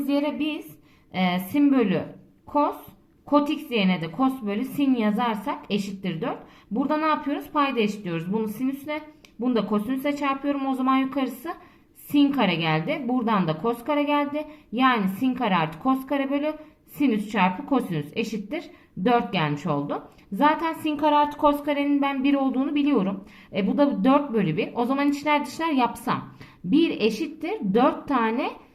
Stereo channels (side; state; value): both; identical; correlation 1.00